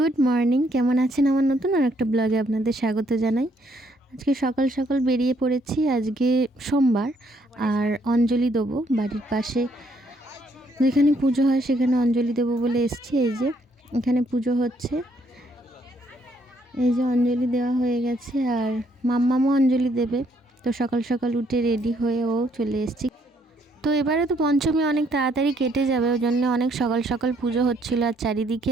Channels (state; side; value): normal; both; correlation 0.69